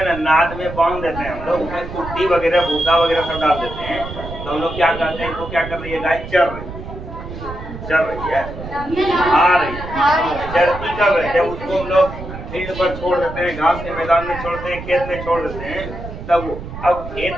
ना नाद में बांध देते हैं हम लोग, उसमें कुट्टी वगैरह भूसा वगैरह सब डाल देते हैं, तो हम लोग क्या करते हैं, तो क्या कर रही है, गाय चर रही है, खा रही है। चरती कब है, जब उसको हम लोग फील्ड पर छोड़ देते हैं, घास के मैदान में छोड़ते हैं, खेत में छोड़ देते हैं, तब अब खेत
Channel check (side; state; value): right; noise; rumble, 10 dB below the sound